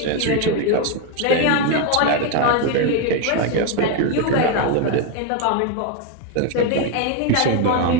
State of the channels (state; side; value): different; both; correlation 0.01